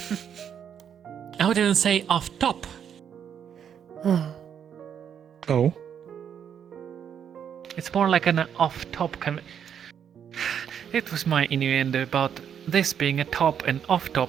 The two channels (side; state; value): left; quieter; 8.4 dB